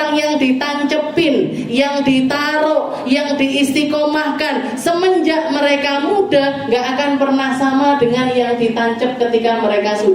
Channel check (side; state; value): both; identical; correlation 1.00